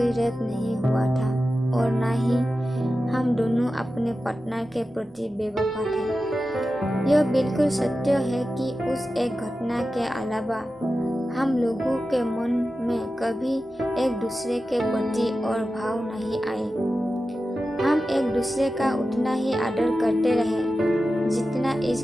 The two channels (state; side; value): normal; both; correlation 0.93